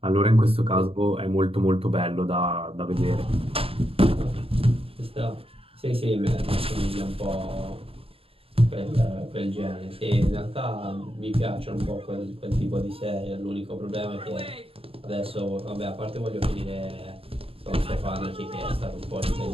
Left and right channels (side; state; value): left; late; 0.27 ms